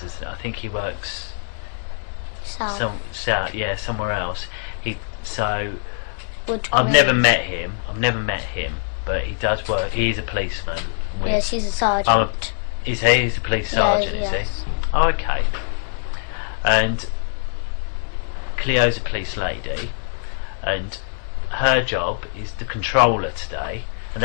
I think he works south, yeah, somewhere else. I've never met him, but he does work. He's a policeman. Yes, he's a sergeant. He's a police sergeant, is he? Oh, okay. And Cleo's a police lady, and her job is the controller today, and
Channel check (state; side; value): silent; right; 64 dB below the other